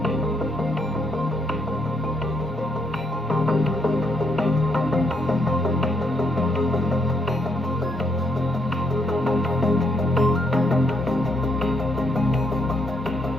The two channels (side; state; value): both; normal; correlation 0.74